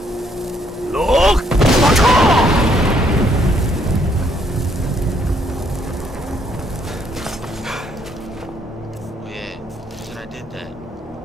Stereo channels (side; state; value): both; normal; correlation 0.70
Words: Look! Oh yeah, should I did that?